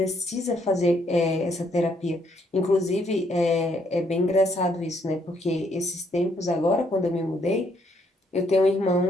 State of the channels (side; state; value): both; normal; correlation 0.71